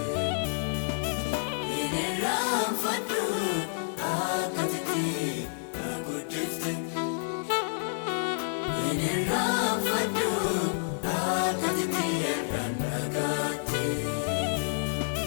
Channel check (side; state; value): right; silent; digital silence